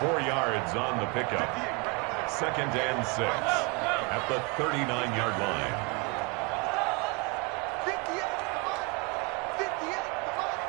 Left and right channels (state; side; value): quieter; left; 30.4 dB